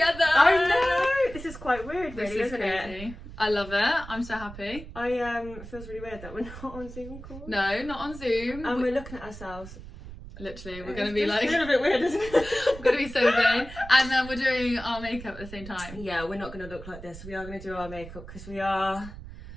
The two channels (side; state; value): right; noise; rumble, 14 dB below the sound